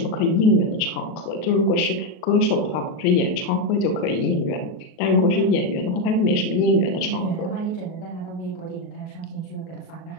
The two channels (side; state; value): right; late; 38 ms